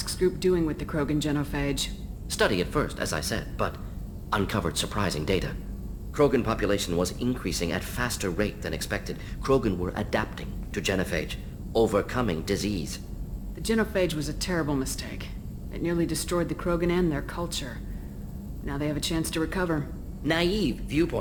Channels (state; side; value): identical; both; correlation 1.00